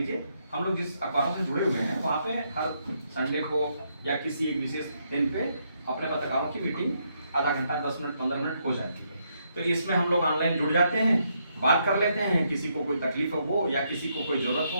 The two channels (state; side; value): inverted; both; correlation -0.76